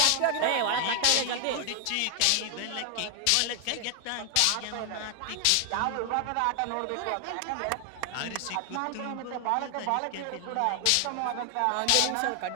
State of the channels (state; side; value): different; both; correlation 0.00